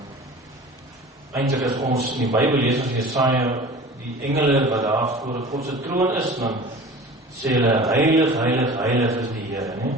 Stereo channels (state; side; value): normal; both; correlation 0.40